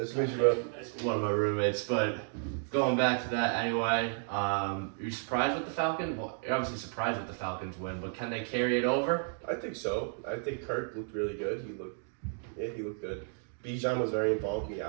to meet you, bro. One of my roommates. But going back to that anyway, you surprised with the Falcons? Well, you're obviously surprised with the Falcons win, but can they carry it over? I think so. I think Kirk looked really good. He looked good. Bijan was very involved in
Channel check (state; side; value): silent; left; 56 dB below the other